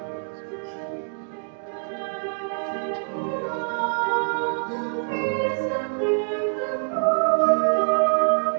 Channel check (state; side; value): silent; left; digital silence